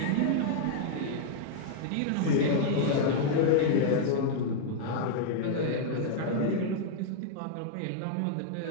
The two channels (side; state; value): both; different; correlation -0.01